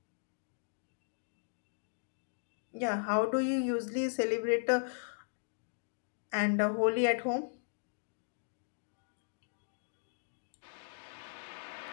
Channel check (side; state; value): right; silent; digital silence